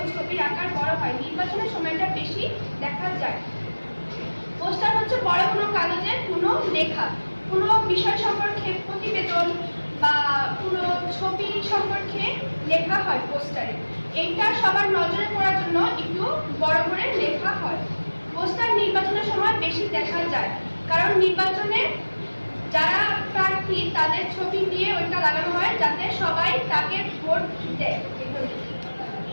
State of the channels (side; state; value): both; inverted; correlation -1.00